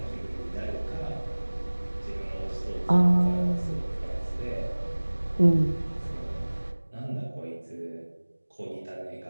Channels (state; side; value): inverted; both; correlation -1.00